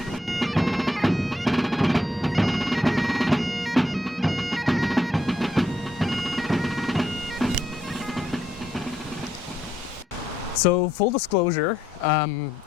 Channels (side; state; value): both; normal; correlation 0.75